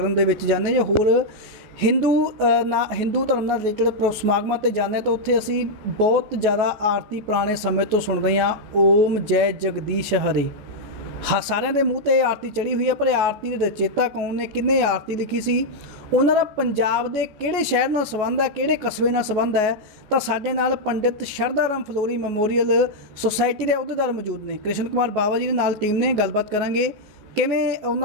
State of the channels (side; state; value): left; late; 14 ms